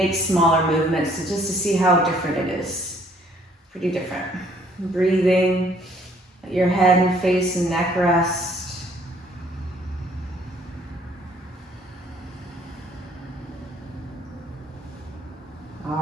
smaller movements just to see how different it is. Pretty different. Breathing, let your head and face and neck rest.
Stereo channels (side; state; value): both; normal; correlation 0.62